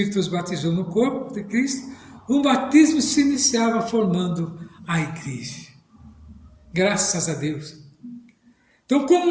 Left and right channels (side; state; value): both; identical; correlation 1.00